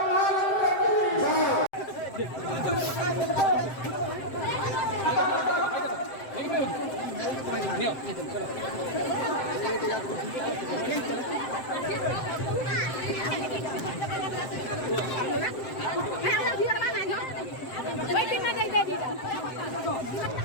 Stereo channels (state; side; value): late; right; 7.6 ms